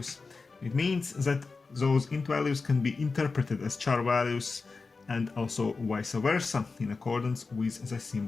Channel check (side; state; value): right; quieter; 4.2 dB